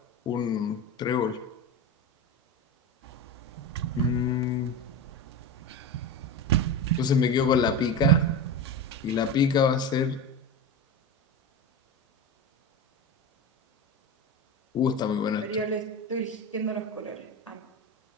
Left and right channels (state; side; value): normal; both; correlation 0.23